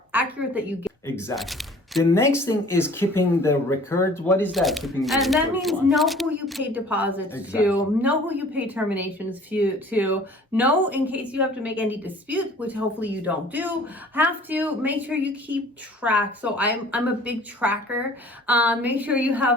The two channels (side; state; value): both; normal; correlation 0.50